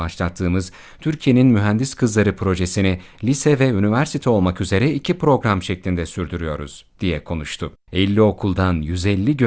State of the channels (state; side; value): identical; both; correlation 1.00